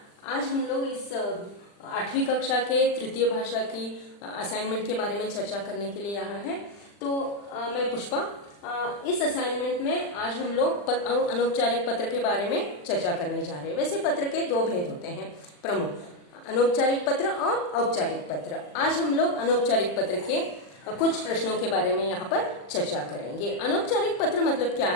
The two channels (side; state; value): right; late; 40 ms